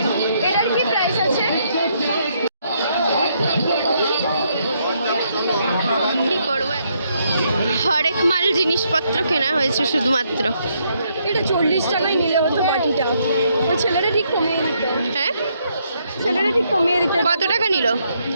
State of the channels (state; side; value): inverted; both; correlation -0.74